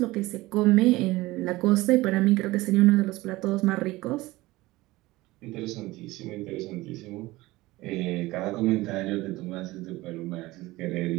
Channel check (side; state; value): left; quieter; 19.5 dB